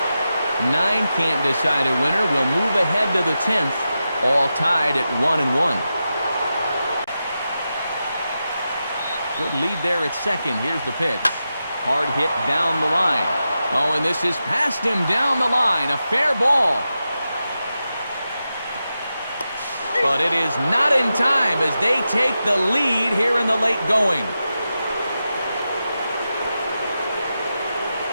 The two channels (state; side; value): inverted; both; correlation -0.90